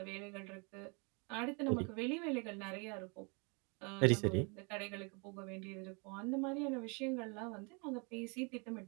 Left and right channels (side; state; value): left; quieter; 32.9 dB